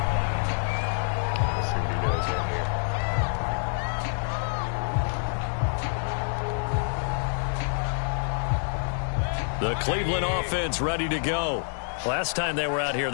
The Cleveland offense ready to go. Last time they were out here,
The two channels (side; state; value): right; silent; digital silence